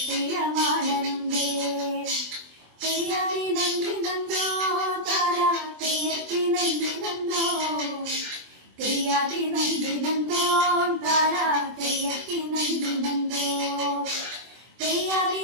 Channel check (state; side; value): late; left; 24 ms